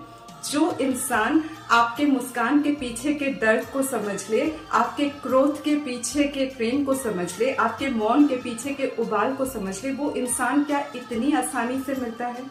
जो इंसान आपके मुस्कान के पीछे के दर्द को समझ ले, आपके क्रोध के पीछे के प्रेम को समझ ले, आपके मौन के पीछे के उबाल को समझ ले, वो इंसान क्या इतनी आसानी से मिलता है?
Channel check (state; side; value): identical; both; correlation 1.00